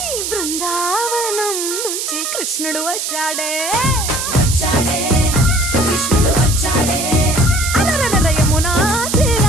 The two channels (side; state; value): right; noise; hiss, 3 dB below the sound